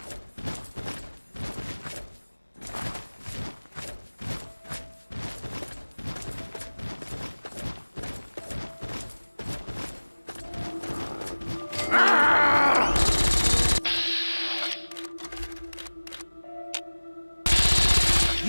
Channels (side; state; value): both; inverted; correlation -1.00